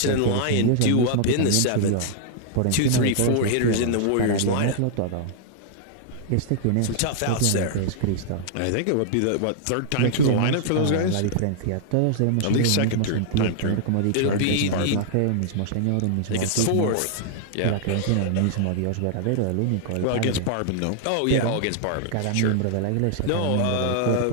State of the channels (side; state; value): both; different; correlation -0.01